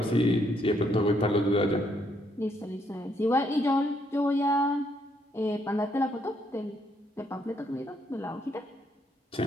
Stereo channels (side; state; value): both; normal; correlation 0.73